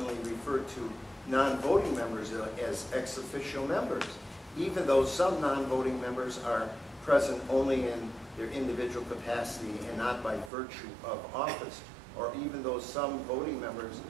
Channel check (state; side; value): drops out; left; at 10.5 s